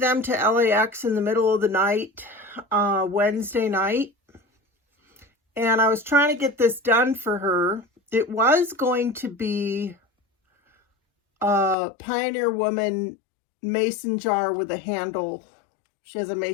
to LAX in the middle of the night, Wednesday night. And I was trying to get this done for her. It was going to be a Pioneer Woman mason jar with a handle. She has a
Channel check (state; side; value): drops out; right; at 11.8 s